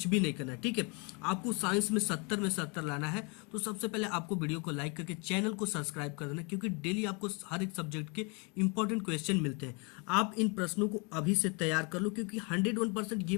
भी नहीं करना है। ठीक है, आपको साइंस में 70 में 70 लाना है। तो सबसे पहले आपको वीडियो को लाइक करके चैनल को सब्सक्राइब कर देना, क्योंकि डेली आपको हर एक सब्जेक्ट के इंपॉर्टेंट क्वेश्चन मिलते हैं। आप इन प्रश्नों को अभी से तैयार कर लो, क्योंकि 101%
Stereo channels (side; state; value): right; quieter; 32.2 dB